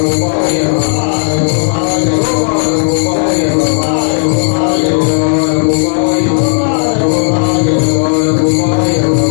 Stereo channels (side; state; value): right; silent; digital silence